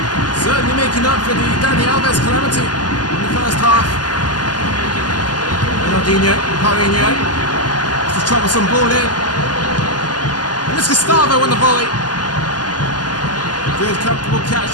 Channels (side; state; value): right; late; 0.70 ms